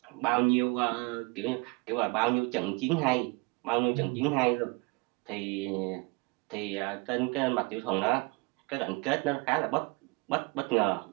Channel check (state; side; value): quieter; left; 26.6 dB